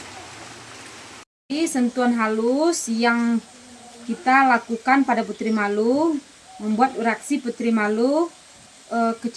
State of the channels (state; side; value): identical; both; correlation 1.00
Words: Sentuhan halus yang kita lakukan pada putri malu membuat reaksi putri malu